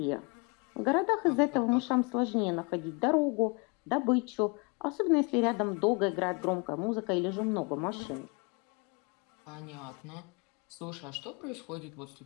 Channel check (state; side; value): quieter; right; 31.7 dB